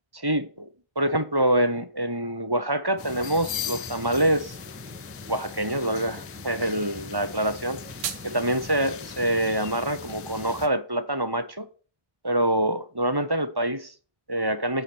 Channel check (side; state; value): left; late; 1.1 ms